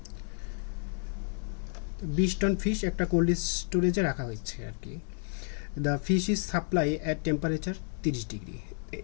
20 টন ফিশ একটা কোল্ড স্টোরেজে রাখা হয়েছে আর কি। The fish is supply at temperature 30 degree.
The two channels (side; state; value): right; silent; 57 dB below the other